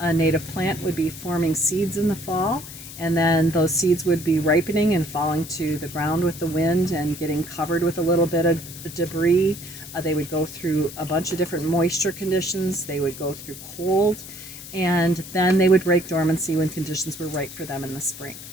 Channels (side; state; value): left; noise; hiss, 13 dB below the sound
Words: native plant would be forming seeds in the fall, and then those seeds would be ripening and falling to the ground with the wind and getting covered with a little bit of debris. They would go through a bunch of different moisture conditions. They would go through cold, and then they would break dormancy when conditions were right for them in the spring.